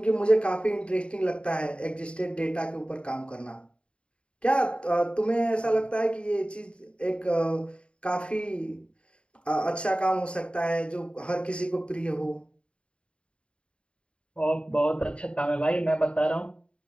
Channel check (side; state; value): right; late; 0.057 ms